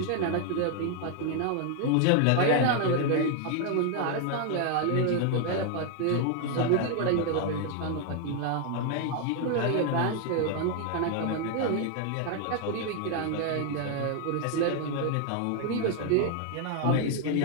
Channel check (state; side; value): different; both; correlation 0.00